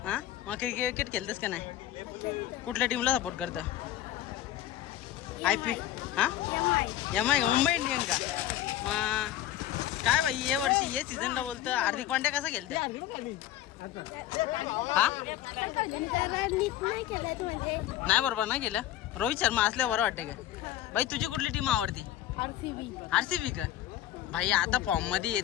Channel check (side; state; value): right; quieter; 12.8 dB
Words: हा, मग क्रिकेट खेळतेस का नाही? कुठल्या टीमला सपोर्ट करतं? IPL? हा, MI का? मुंबई इंडियन का? मग काय बाई, ये वर्षी ये सीझनला बोलतं हार्दिक पांड्या कसा खेळतंय? हा, नाही बरोबर नाही केलं. रोहित शर्मा असल्यावर बरं वाटतं का? बाई तुझी कुठली टीम आवडती? RCB का? भाई आता फॉर्म मध्ये येत